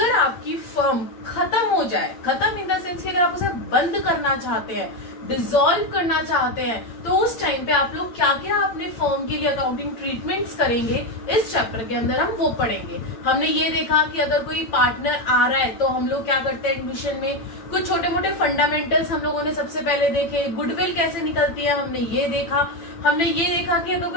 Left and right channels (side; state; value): right; late; 8.9 ms